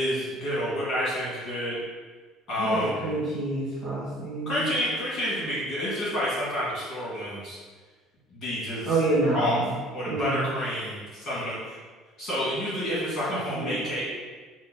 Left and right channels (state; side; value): normal; both; correlation 0.51